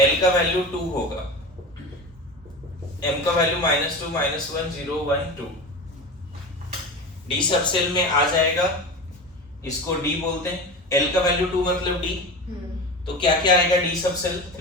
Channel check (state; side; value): normal; both; correlation 0.28